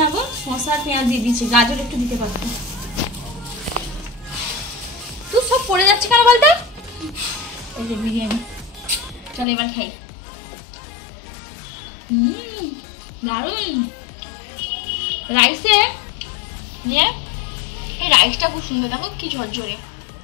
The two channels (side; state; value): right; drops out; at 9.5 s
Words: না গো, শসা আর পেঁয়াজ দিয়ে দিচ্ছি, গাজর একটু দিতে পারতো। তুই সব পড়ে যাচ্ছে কেন বলতো? এই যে বিরিয়ানি, চলো এবার খাই। দারুন রাইসে নিয়ে, এই রাইসটা খুব সুন্দর, দেখো কি ঝরঝরে।